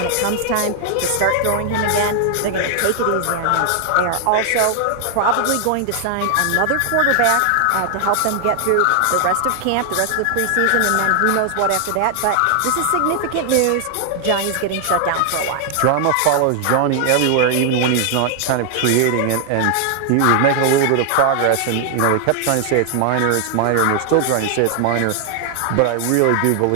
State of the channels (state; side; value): different; both; correlation 0.00